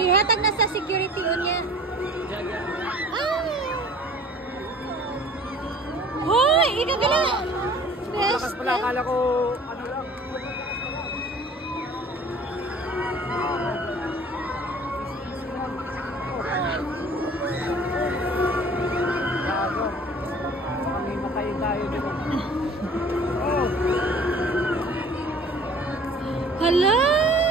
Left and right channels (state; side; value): normal; both; correlation 0.48